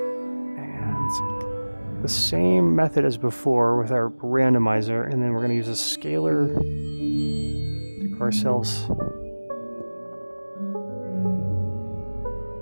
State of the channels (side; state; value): both; inverted; correlation -1.00